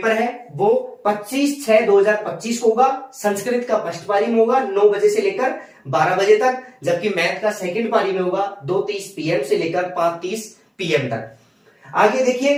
है वो 25/6/2025 को होगा। संस्कृत का फर्स्ट पारी में होगा 9 बजे से लेकर 12 बजे तक, जबकि मैथ का सेकंड पारी में होगा 2:30 PM से लेकर 5:30 PM तक। आगे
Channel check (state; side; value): identical; both; correlation 1.00